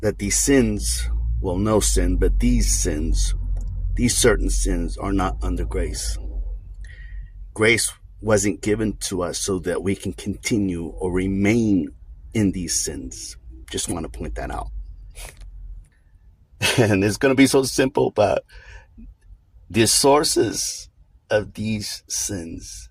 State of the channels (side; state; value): both; identical; correlation 1.00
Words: these sins, well, no sin, but these certain sins are not under grace. Grace wasn't given to us so that we can continue or remain in these sins. Just want to point that out. And it's going to be so simple, but the sources of these sins,